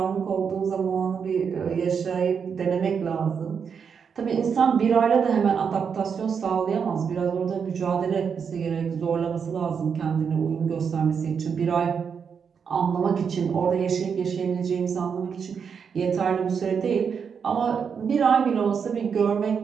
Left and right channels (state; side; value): quieter; left; 6.6 dB